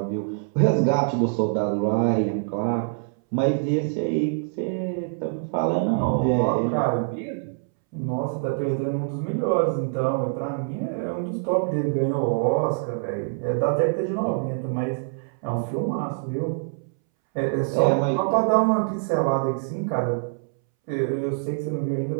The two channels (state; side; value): silent; left; 62 dB below the other